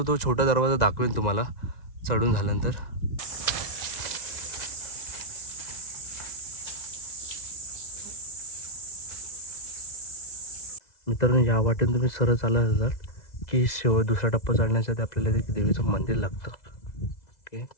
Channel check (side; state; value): right; late; 2.0 ms